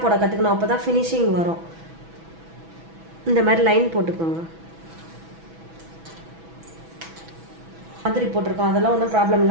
போட கற்றுக்கணும், அப்போ தான் ஃபினிஷிங் வரும். இந்த மாதிரி லைன் போட்டுக்கோங்க. மாதிரி போட்டிருக்கோம், அதெல்லாம் ஒன்றும் ப்ராப்ளம்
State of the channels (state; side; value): late; left; 6.1 ms